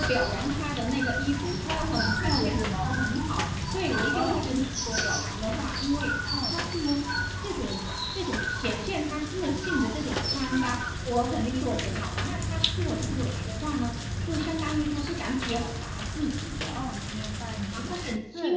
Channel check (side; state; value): both; identical; correlation 1.00